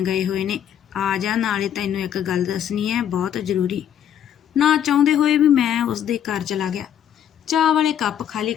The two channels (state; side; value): quieter; right; 9.7 dB